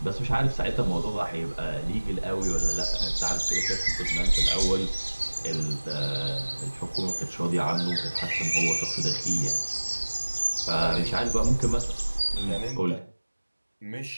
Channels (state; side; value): inverted; both; correlation -1.00